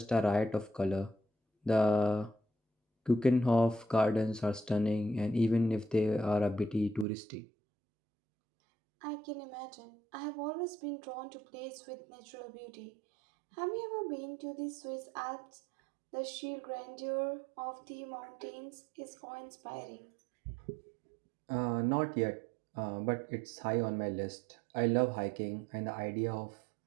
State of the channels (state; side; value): drops out; left; at 7.1 s